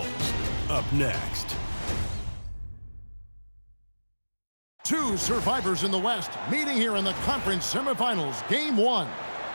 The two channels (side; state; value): both; inverted; correlation -1.00